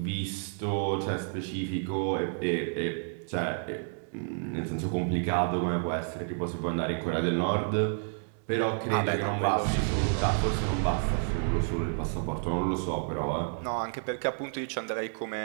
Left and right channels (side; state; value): left; silent; 58 dB below the other